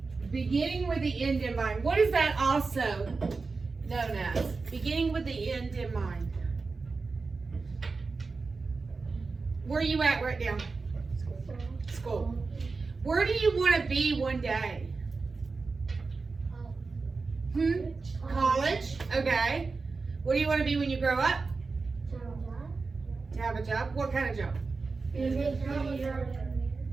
beginning with the end in mind. What is that also known as? Beginning with the end in mind. Where are you at right now? School. Where do you want to be one day? College. Okay. What do you want to be when you grow up? To have a job. What kind of job?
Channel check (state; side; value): quieter; left; 4.2 dB